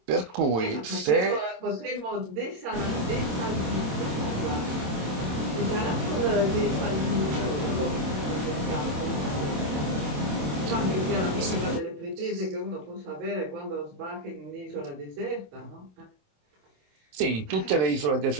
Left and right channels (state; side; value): late; left; 27 ms